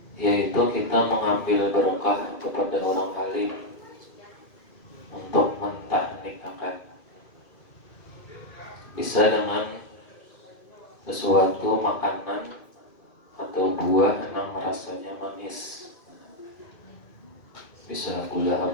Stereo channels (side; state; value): right; late; 2.2 ms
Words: yaitu kita mengambil berkah kepada orang alim untuk mentahnikkan. Bisa dengan sesuatu makanan atau buah yang rasanya manis. Bisa gula